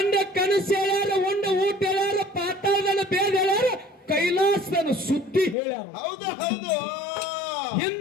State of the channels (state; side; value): drops out; right; at 5.6 s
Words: ಕನಸು ಹೇಳ್ಯಾರ, ಉಂಡ ಊಟ ಹೇಳ್ಯಾರ, ಪಾತಾಳದನ್ನ ಬೇದ ಹೇಳ್ಯಾರ, ಕೈಲಾಸದನ್ನ ಸುದ್ದಿ ಹೇಳ್ಯಾರ. ಹೌದು ಹೌದು.